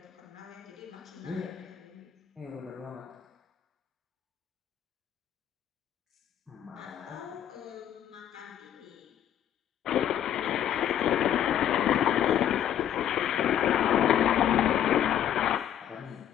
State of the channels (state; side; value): quieter; right; 10.2 dB